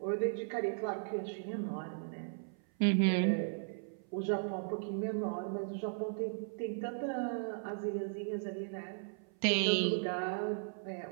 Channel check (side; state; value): left; silent; 53 dB below the other